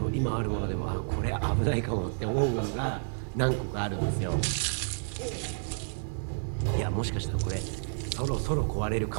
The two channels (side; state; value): left; silent; digital silence